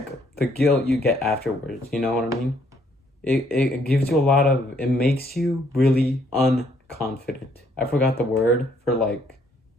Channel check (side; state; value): both; normal; correlation 0.67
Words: the guilt you get afterwards. You know what I mean? It gives you it makes you really unconfident. I forgot the word I